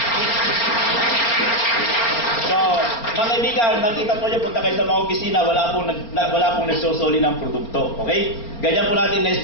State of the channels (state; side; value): late; right; 4.3 ms